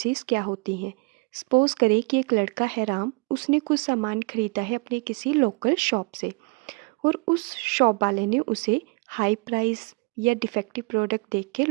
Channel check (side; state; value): left; quieter; 30.1 dB